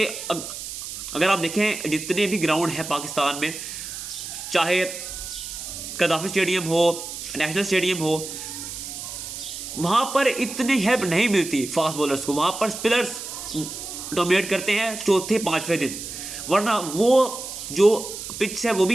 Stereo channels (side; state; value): right; noise; hiss, 8 dB below the sound